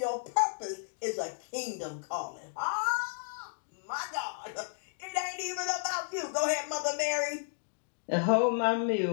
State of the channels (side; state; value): right; silent; digital silence